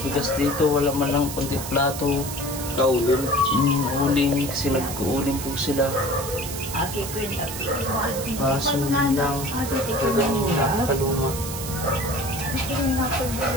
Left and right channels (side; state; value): right; noise; hiss, 8 dB below the sound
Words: dito. Wala man lang kunti plato. Kaulin. Uling. Kasi nag-uuling po sila. Aki ko yun. Kaso lang. Talagang nakakaluma.